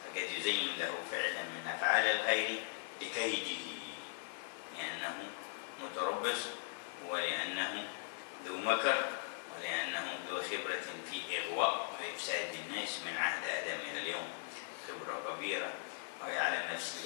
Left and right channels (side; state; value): right; silent; digital silence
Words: فقد يزين له فعلا من أفعال الخير لكيده، لأنه متربص، ولأنه ذو مكر، ولأنه ذو خبرة في إغواء وإفساد الناس من عهد آدم إلى اليوم، خبرة كبيرة، ويعلم